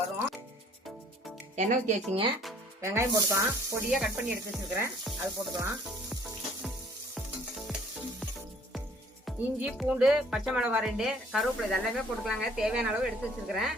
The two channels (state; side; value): normal; both; correlation 0.56